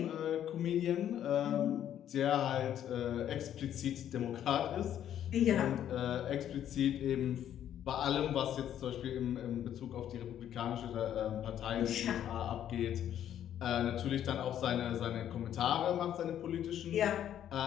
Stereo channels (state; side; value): quieter; right; 10.5 dB